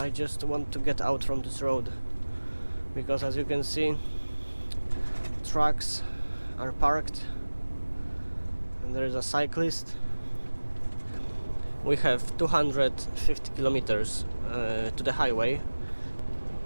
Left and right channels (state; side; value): inverted; both; correlation -1.00